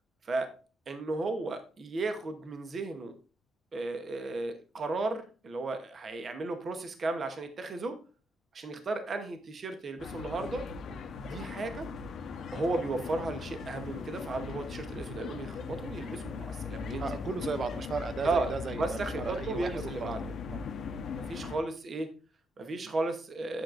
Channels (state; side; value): normal; both; correlation 0.79